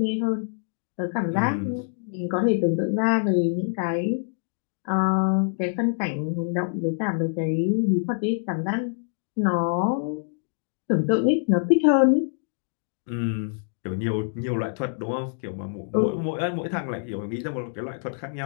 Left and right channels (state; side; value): silent; right; digital silence